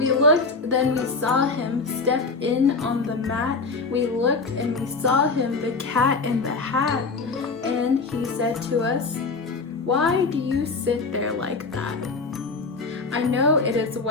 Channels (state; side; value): quieter; right; 4.1 dB